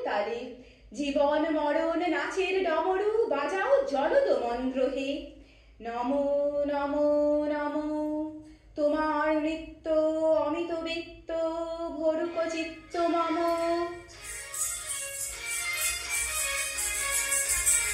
তালে, জীবন মরণ নাচের ডমরু বাজাও জলদ মন্ত্র হে। নমো নমো নমো, তোমার নৃত্য অমিত বৃত্ত ভরুক চিত্ত মম।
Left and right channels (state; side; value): identical; both; correlation 1.00